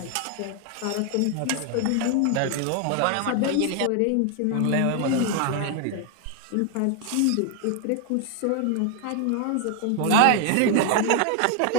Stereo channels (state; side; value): different; both; correlation 0.01